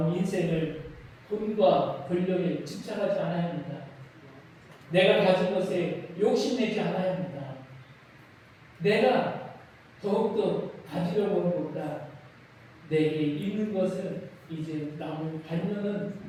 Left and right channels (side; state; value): both; identical; correlation 1.00